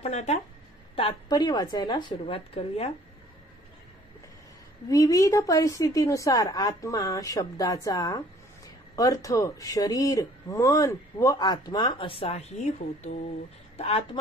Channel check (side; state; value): both; normal; correlation 0.55